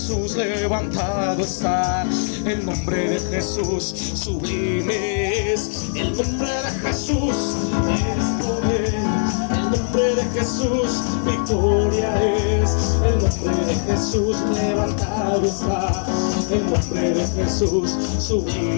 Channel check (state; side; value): silent; right; digital silence